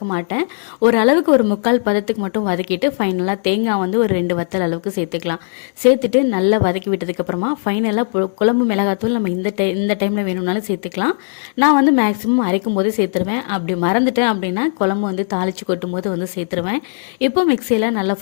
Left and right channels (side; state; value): right; silent; digital silence